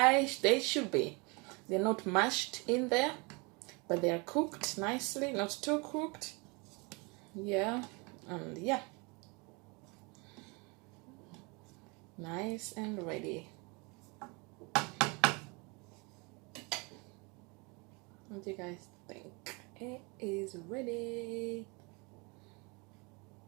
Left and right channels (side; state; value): left; quieter; 29.3 dB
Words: they should be. They're not mashed in there, but they are cooked nicely, not too cooked. Yeah, and yeah, nice and ready. What do you guys think? It is ready.